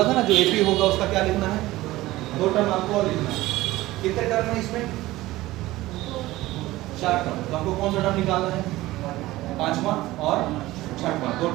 था ना जो AP होगा उसका क्या लिखना है? दो टर्म आपको और लिखना है। कितने टर्म है इसमें? 4 टर्म। तो हमको कौन सा टर्म निकालना है? पांचवा और छठवां। दो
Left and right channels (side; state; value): left; quieter; 17.6 dB